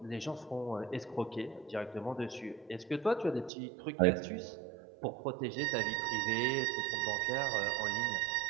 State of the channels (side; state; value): left; drops out; at 3.5 s